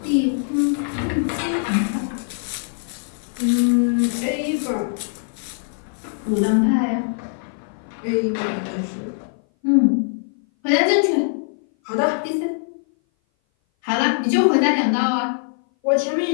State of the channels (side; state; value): right; silent; 58 dB below the other